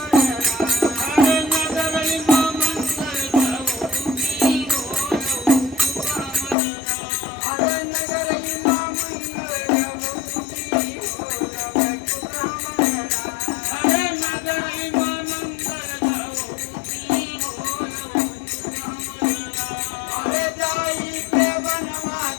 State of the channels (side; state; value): right; drops out; at 6.6 s